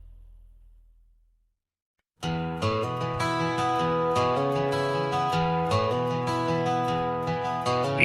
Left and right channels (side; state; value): both; identical; correlation 1.00